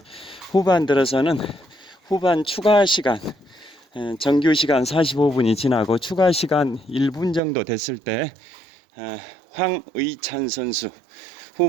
후반 들어서는 후반 추가 시간, 정규 시간 45분이 지나고 추가 시간 1분 정도 됐을 때 황의찬 선수,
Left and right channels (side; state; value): left; drops out; at 7.4 s